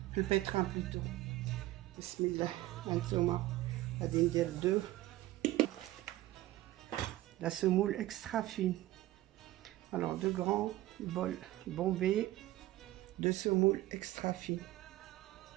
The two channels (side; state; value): left; quieter; 16.3 dB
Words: في البيتران بلوتو. بسم الله. هانتوما غادي ندير دو la semoule extra fine. Alors deux grands bols bombés de semoule extra fine.